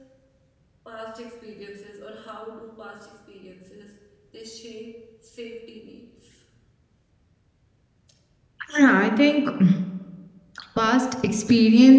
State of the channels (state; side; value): identical; both; correlation 1.00